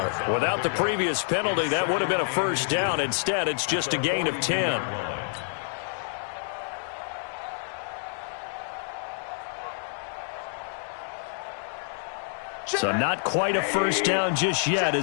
Without the previous penalty, that would have been a 1st down. Instead, it's just a gain of 10. So not quite a first down just yet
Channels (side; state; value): right; silent; digital silence